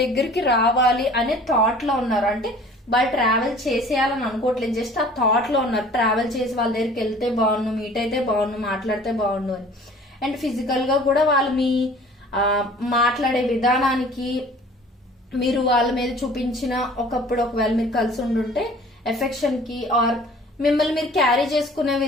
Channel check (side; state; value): both; normal; correlation 0.49